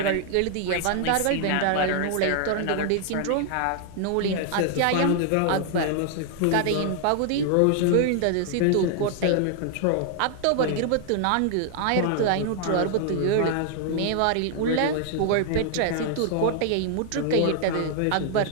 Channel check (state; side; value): different; both; correlation 0.00